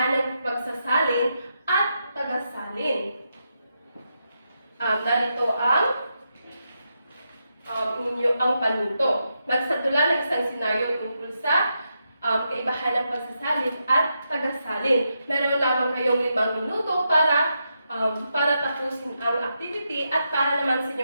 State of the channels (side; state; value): both; inverted; correlation -0.84